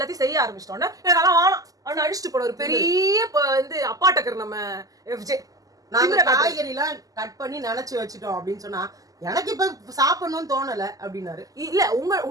செய்ய ஆரம்பிச்சிட்டோன்னா எனக்கு வேணாம் அவனை அடிச்சுட்டு போன ஒரு பெரிய வந்து அப்பாட்டக்கர் நம்ம FJ. நாங்க காய்கறி எல்லாம் கட் பண்ணி நினைச்சு வச்சுட்டோம் அப்படின்னு சொன்னா எனக்கு இப்ப சாப்பிடணும்னு தோணல அப்படின்னாரு. இல்ல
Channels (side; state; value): left; late; 0.17 ms